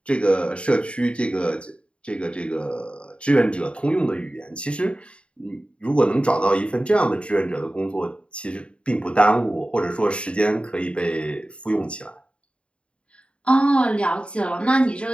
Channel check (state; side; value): late; right; 0.058 ms